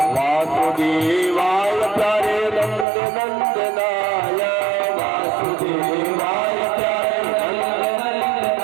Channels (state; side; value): drops out; left; at 2.9 s